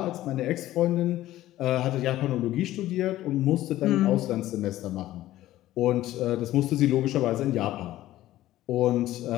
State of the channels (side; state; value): right; quieter; 14.8 dB